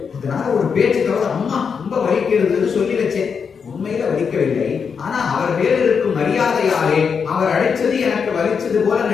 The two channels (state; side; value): quieter; right; 6.2 dB